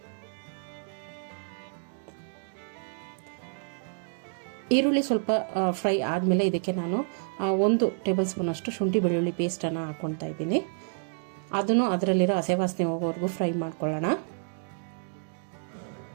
ಈರುಳ್ಳಿ ಸ್ವಲ್ಪ ಫ್ರೈ ಆದಮೇಲೆ ಇದಕ್ಕೆ ನಾನು 1 ಟೇಬಲ್ ಸ್ಪೂನಷ್ಟು ಶುಂಠಿ ಬೆಳ್ಳುಳ್ಳಿ ಪೇಸ್ಟನ್ನು ಹಾಕ್ಕೊತಾ ಇದ್ದೀನಿ. ಅದನ್ನು ಅದರಲ್ಲಿರೋ ಹಸೆ ವಾಸನೆ ಹೋಗೋವರೆಗೂ ಫ್ರೈ ಮಾಡ್ಕೊಳ್ಳೋಣ.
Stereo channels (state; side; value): silent; left; 59 dB below the other